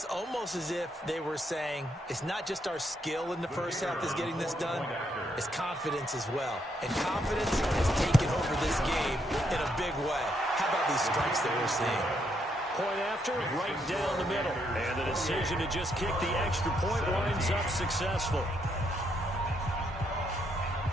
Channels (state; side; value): normal; both; correlation 0.76